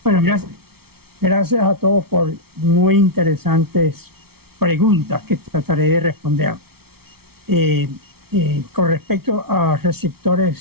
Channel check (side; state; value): left; late; 0.95 ms